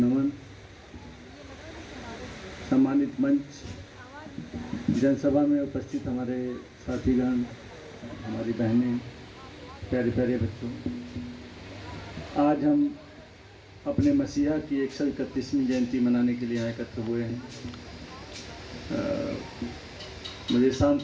सम्मानित मंच, जनसभा में उपस्थित हमारे साथीगण, हमारी बहनें, प्यारे प्यारे बच्चों, आज हम अपने मसीहा की 131वीं जयंती मनाने के लिए यहाँ एकत्र हुए हैं। मुझे शाम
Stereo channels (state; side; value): identical; both; correlation 1.00